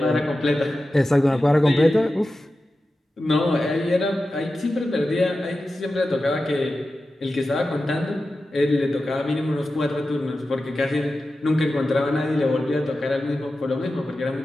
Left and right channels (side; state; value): both; normal; correlation 0.93